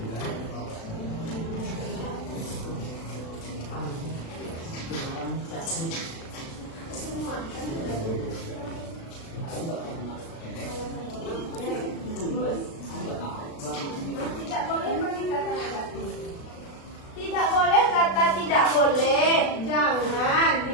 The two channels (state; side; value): late; right; 36 ms